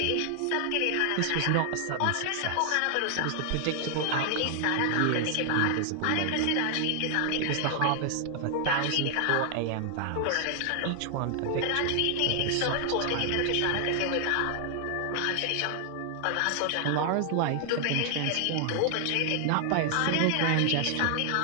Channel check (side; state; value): both; different; correlation 0.00